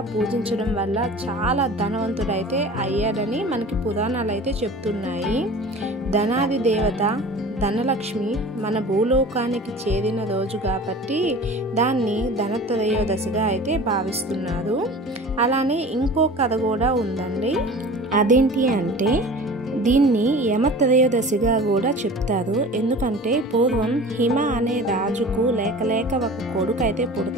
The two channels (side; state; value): both; normal; correlation 0.40